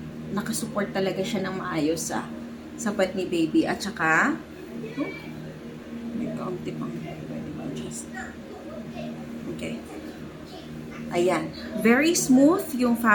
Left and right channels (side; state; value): both; identical; correlation 1.00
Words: nakasupport talaga siya ng maayos sa puwet ni baby. At saka, may kaunti pang pwede ma-adjust. Okay. Ayan. Very smooth yung